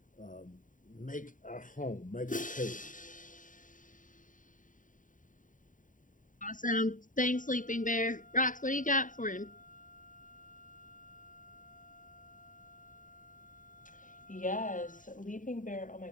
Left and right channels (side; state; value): right; late; 0.38 ms